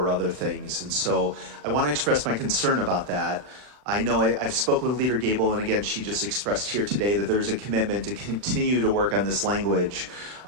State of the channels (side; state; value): left; late; 40 ms